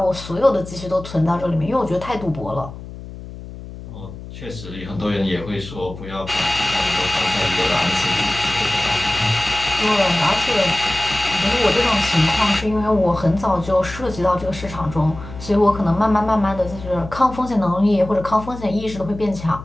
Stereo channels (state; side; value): noise; left; hum, 13 dB below the sound